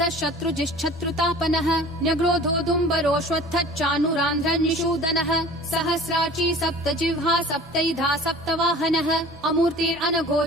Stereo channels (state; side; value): normal; both; correlation 0.44